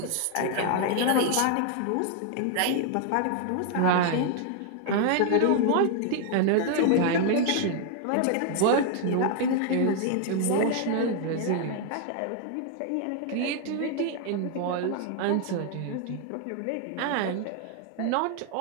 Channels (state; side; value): different; both; correlation 0.00